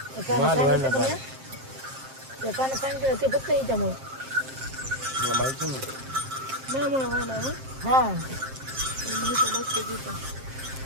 त्या काना सांगितलं ते फक्त हिच्यामुळे माहिती नाही हा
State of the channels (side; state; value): left; late; 7.5 ms